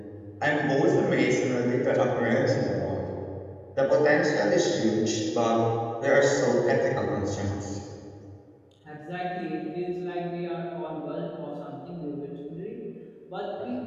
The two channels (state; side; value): identical; both; correlation 1.00